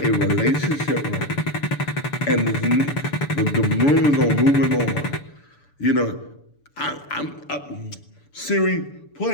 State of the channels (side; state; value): right; late; 6.9 ms